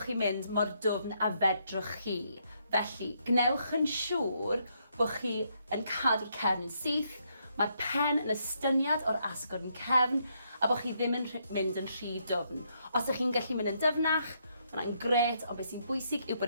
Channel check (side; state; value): both; inverted; correlation -0.75